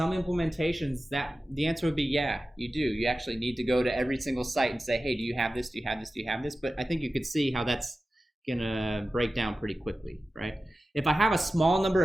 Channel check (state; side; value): normal; both; correlation 0.94